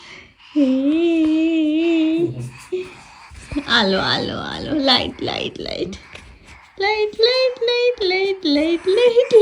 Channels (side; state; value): both; identical; correlation 1.00